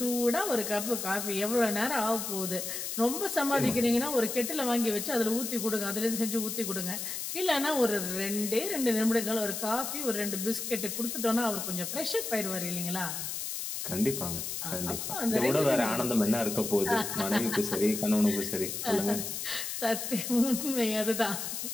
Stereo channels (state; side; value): noise; left; hiss, 4 dB below the sound